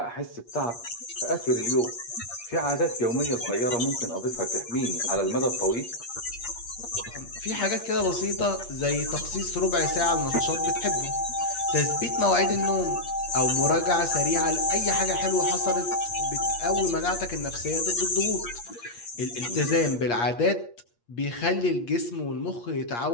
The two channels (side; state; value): right; late; 8.5 ms